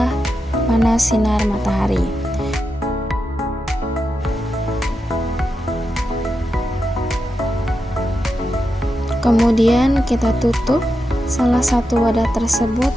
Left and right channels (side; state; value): both; normal; correlation 0.88